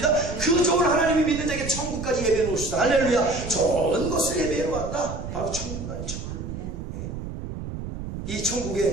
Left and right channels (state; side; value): noise; right; rumble, 8 dB below the sound